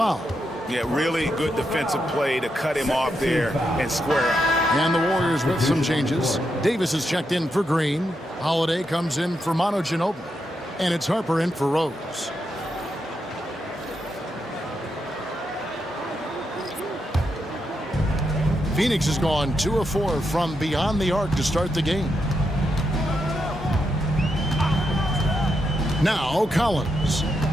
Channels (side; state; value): both; normal; correlation 0.83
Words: Yeah, really good defensive play to cut him off there and square up. And the Warriors with some changes. Davis is checked in for Green. Holiday comes in for Manu Ginobili. And it's Harper in for Rose. Phoenix has gone 2 of 4 from beyond the arc to start the game. Now Collins.